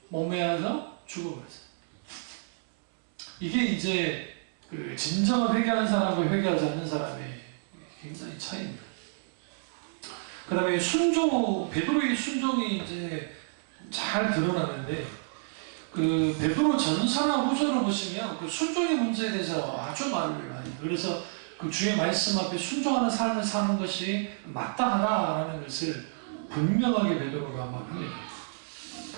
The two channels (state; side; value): silent; left; digital silence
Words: 목매어서 죽어버렸어요. 이게 이제 그 진정한 회개하는 사람과 회개하지 않는 사람의 굉장히 차이입니다. 그 다음에 베드로의 순종이 이제 잘 드러나는데, 그 베드로 전서나 후서를 보시면 그 순종의 문제에 대해서 아주 말을 많이 해요. 그래서 그 주의 말씀 앞에 순종하는 삶을 사는 것이 마땅하다라는 것을 분명하게 베드로가 말합니다.